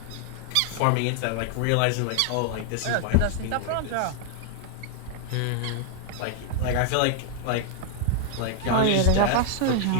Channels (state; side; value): different; both; correlation 0.00